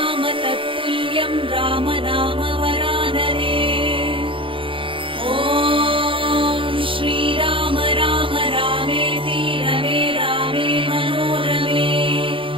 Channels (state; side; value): late; left; 0.25 ms